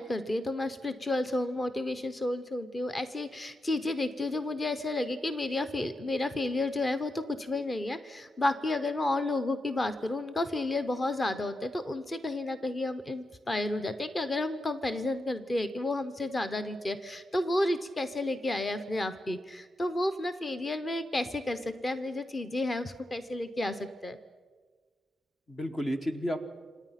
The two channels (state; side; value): normal; both; correlation 0.87